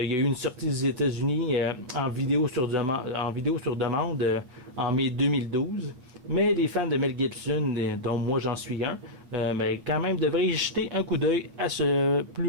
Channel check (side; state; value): left; late; 8.1 ms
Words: y a eu une sortie aux États-Unis en vidéo sur demande en mai 2012. Mais les fans de Mel Gibson, dont moi j'en suis un, quand même devraient y jeter un coup d'œil à ce